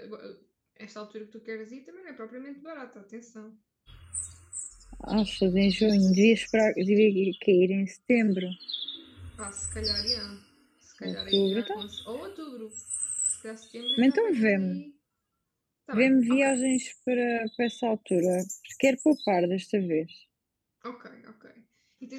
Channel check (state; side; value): identical; both; correlation 1.00